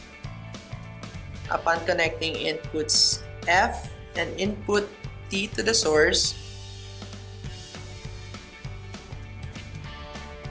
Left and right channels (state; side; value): identical; both; correlation 1.00